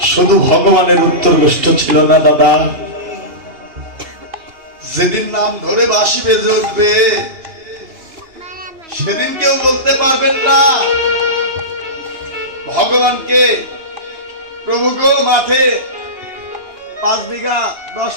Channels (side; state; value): left; late; 2.9 ms